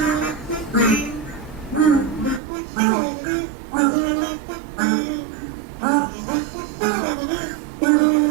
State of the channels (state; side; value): drops out; left; at 2.4 s